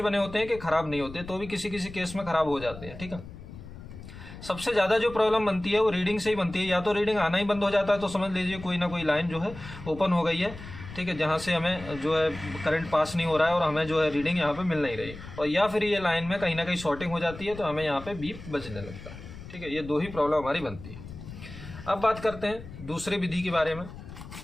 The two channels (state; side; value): noise; left; rumble, 14 dB below the sound